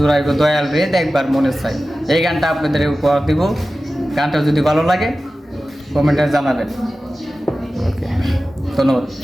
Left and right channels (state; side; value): normal; both; correlation 0.95